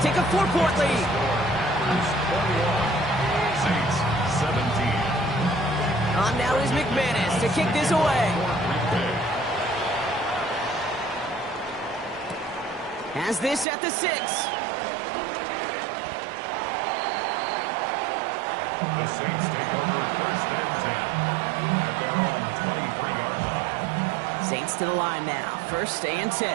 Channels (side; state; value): left; drops out; at 13.7 s